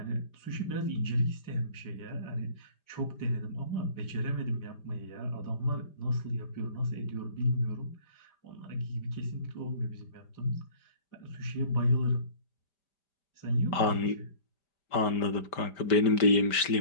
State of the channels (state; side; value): late; right; 5.2 ms